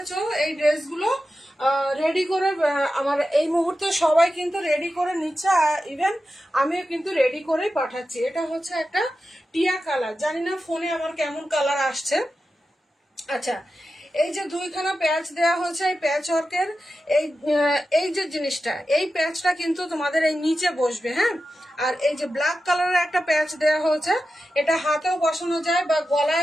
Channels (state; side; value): normal; both; correlation 0.91